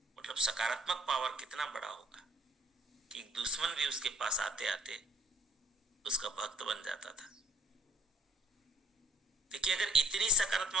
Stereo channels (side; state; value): both; normal; correlation 0.61